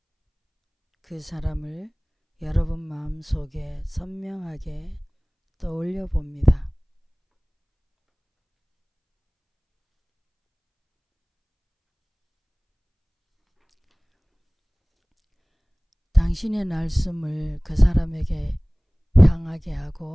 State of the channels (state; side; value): identical; both; correlation 1.00